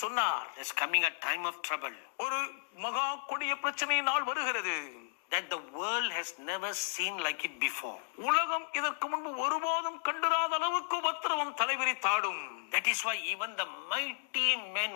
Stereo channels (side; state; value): right; silent; 55 dB below the other